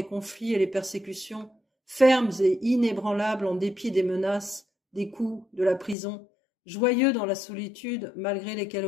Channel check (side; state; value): right; drops out; at 6.0 s